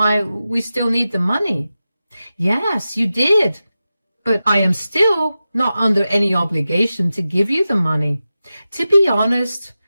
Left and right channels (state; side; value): inverted; both; correlation -0.93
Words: we still need the money." "Yes, you did. But I am still not under any obligation to give you the money. To be honest,